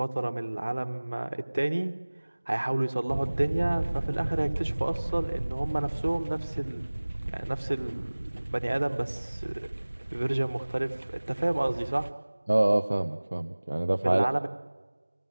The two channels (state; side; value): inverted; both; correlation -1.00